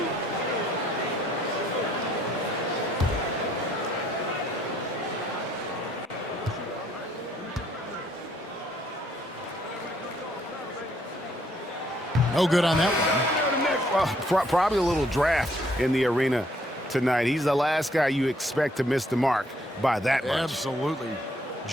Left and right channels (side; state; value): both; normal; correlation 0.67